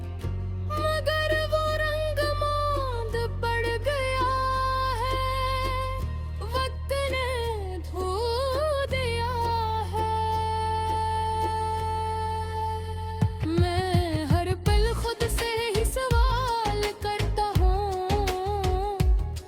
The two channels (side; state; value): both; identical; correlation 1.00